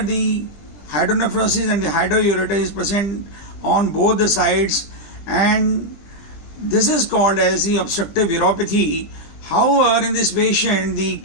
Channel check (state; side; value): late; right; 20 ms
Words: the hydronephrosis and the hydroureter is present on both the sides, and this is called as the obstructive uropathy. However, in this patient, the